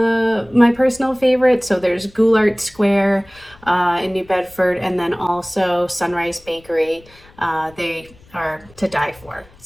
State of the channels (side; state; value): left; noise; rumble, 26 dB below the sound